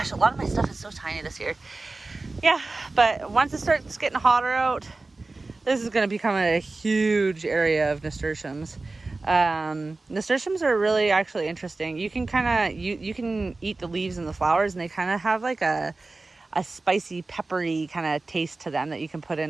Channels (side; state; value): left; quieter; 3.4 dB